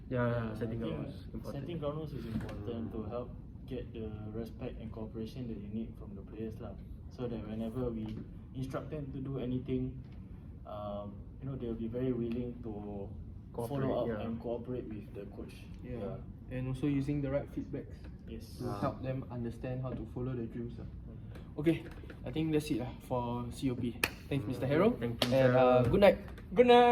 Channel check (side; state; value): both; identical; correlation 1.00